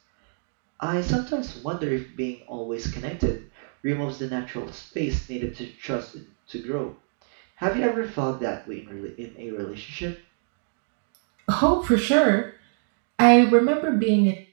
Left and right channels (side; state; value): left; silent; digital silence